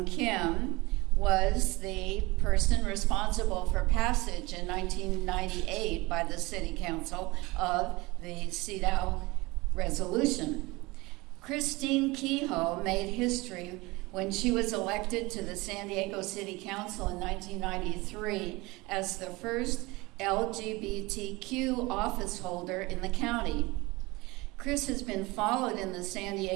Kim, was the person responsible for passage in 1998 by the City Council of the CEDAW resolution. Christine Kehoe made history when she was elected to the San Diego City Council in 1993 as the first LGBTQ office holder in the county. Chris has been followed in the San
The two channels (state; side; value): quieter; left; 22.8 dB